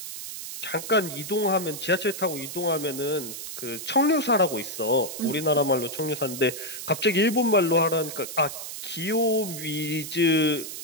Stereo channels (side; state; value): right; noise; hiss, 8 dB below the sound